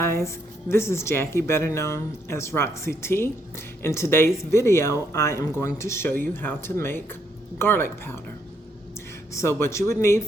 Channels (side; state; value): both; normal; correlation 0.74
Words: this is Jackie, better known as Roxy T. In today's video, I am going to show you how to make garlic powder. So what you would need